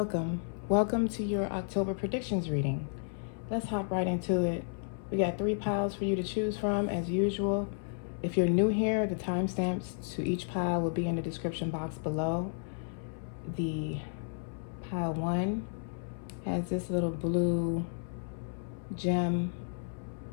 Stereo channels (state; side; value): silent; right; 56 dB below the other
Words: Welcome to your October predictions reading. Let's hop right into it. We got 3 piles for you to choose from as usual. If you're new here, the timestamps to each pile will be in the description box below. The pile 1 has this little blue gem